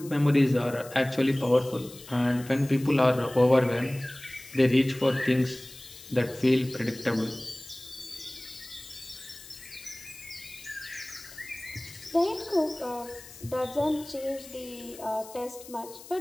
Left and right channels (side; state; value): left; noise; hiss, 17 dB below the sound